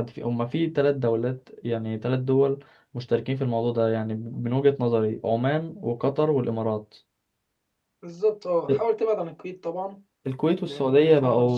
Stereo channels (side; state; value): both; identical; correlation 1.00